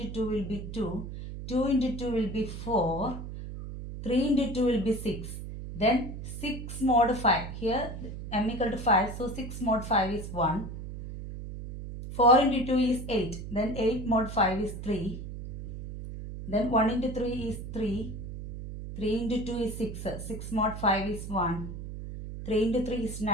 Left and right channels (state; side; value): noise; right; hum, 9 dB below the sound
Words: 2 will be 2. 2 into 2 will be 4, 3 into 2 will be 6, then 6 mod 5, here m equal to 5, so 6 mod 5 is 1, 4 into 2 is 8, then 8 mod 5 is 3, Then 1 into 3 is 3. 3 into 2 is 6. 6 mod 5 is 1. 3 into 3 is